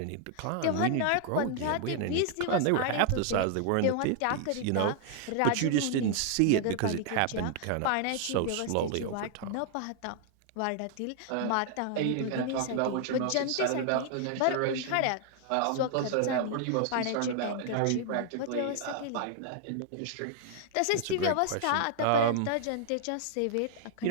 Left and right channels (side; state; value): both; different; correlation 0.00